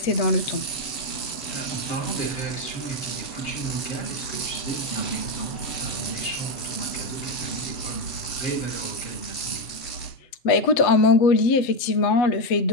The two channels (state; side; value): late; right; 8.1 ms